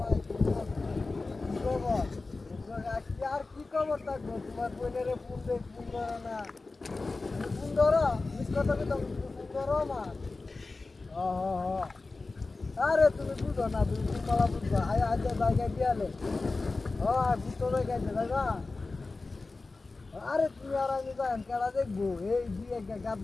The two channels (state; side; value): quieter; right; 3.6 dB